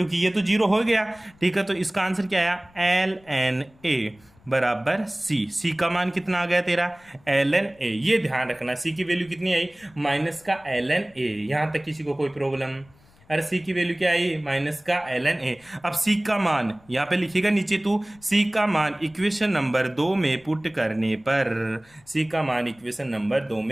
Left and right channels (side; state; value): left; noise; rumble, 29 dB below the sound